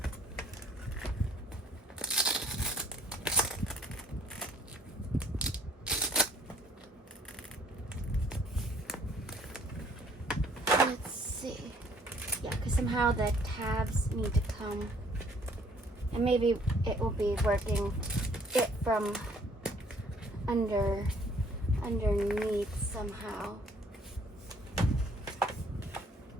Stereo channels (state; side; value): normal; both; correlation 0.61